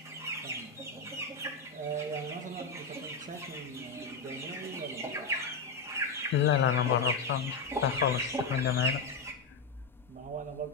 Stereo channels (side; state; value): right; quieter; 4.3 dB